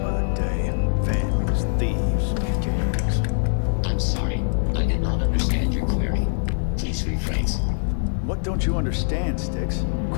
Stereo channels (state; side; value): silent; right; digital silence